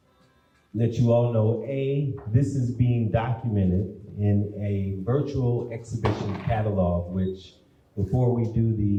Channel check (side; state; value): both; identical; correlation 1.00